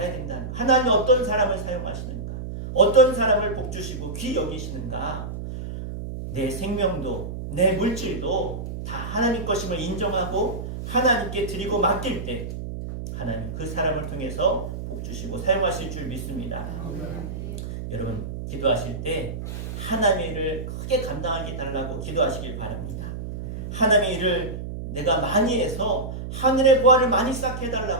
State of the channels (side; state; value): right; noise; hum, 7 dB below the sound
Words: 된다는 거예요. 하나님이 어떤 사람을 사용하시는가, 어떤 사람을 복주시고 귀 여기시는가, 내 생명도 내 물질도 다 하나님 것임을 인정하고 하나님께 드리고 맡길 때 하나님 그 사람을 통해서 복주시고 사용하실 줄 믿습니다. 여러분 기도하실 때 하나님의 일을 크게 감당하게 달라고 기도하시길 바랍니다. 하나님의 일을 내가 많이 해서 하늘의 보화를 많이 쌓게